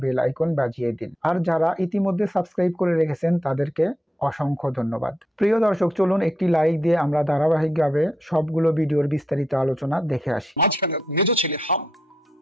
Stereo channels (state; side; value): normal; both; correlation 0.81